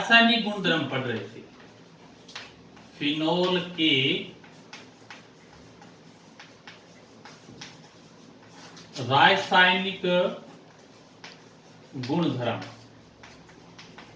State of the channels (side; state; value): both; identical; correlation 1.00